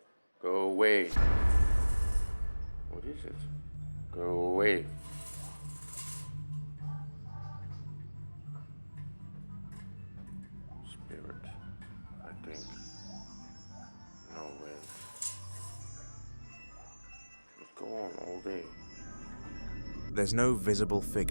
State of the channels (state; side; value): inverted; both; correlation -1.00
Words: Go away. What is it? Go away. Spirit, I think. No way. Go on all day. There's no visible